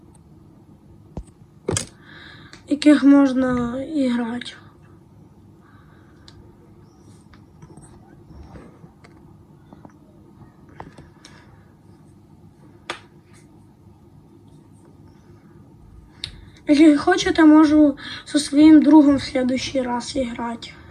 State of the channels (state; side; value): identical; both; correlation 1.00